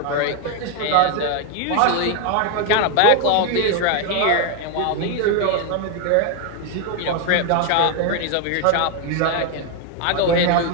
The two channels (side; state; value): both; different; correlation 0.01